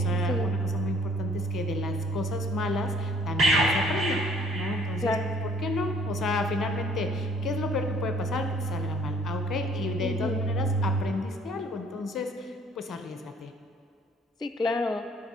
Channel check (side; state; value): both; normal; correlation 0.57